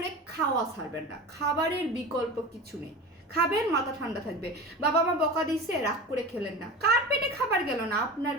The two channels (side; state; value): both; normal; correlation 0.32